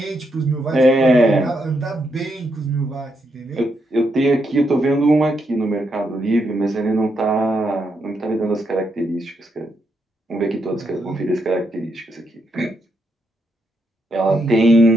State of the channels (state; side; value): normal; both; correlation 0.80